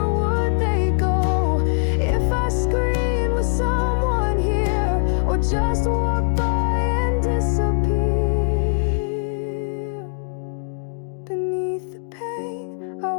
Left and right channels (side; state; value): right; silent; digital silence